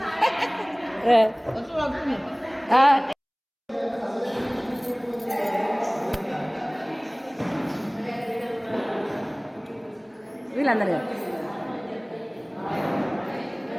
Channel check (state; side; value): identical; both; correlation 1.00